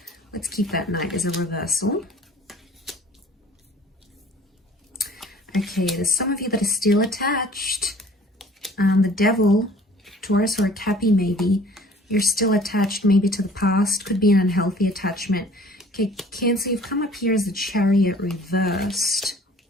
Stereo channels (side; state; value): both; normal; correlation 0.51